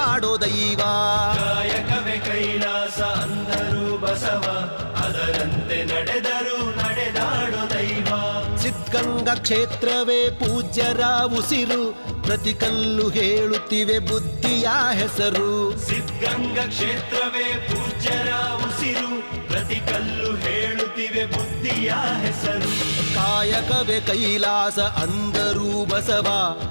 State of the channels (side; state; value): both; inverted; correlation -1.00